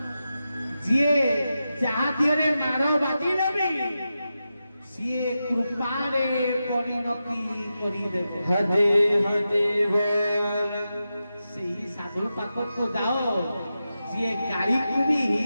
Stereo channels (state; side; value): inverted; both; correlation -0.91